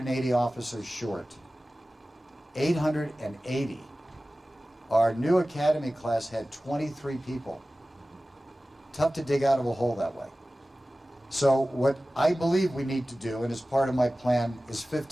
officers short. 880. Our new academy class had 23 people. Tough to dig out of a hole that way. So what I believe we need to do, and as part of my plan, is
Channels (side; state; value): both; normal; correlation 0.96